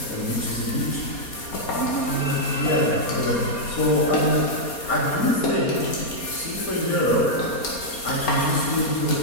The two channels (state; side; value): late; right; 4.2 ms